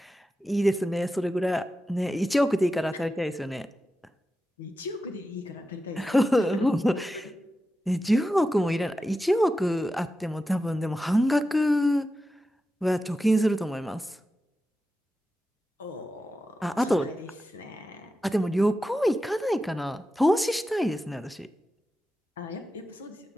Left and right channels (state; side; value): normal; both; correlation 0.92